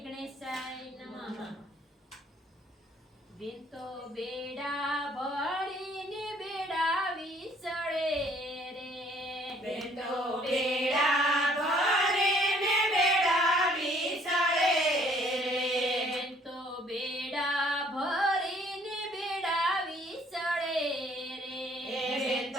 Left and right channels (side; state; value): both; normal; correlation 0.60